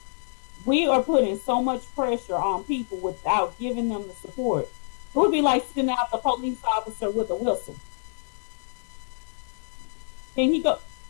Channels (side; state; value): right; silent; digital silence